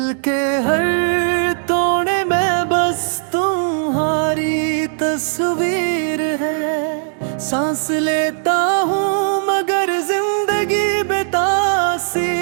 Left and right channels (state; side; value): silent; left; digital silence